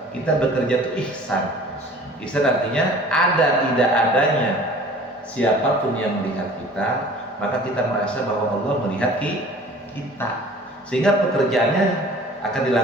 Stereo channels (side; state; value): both; normal; correlation 0.47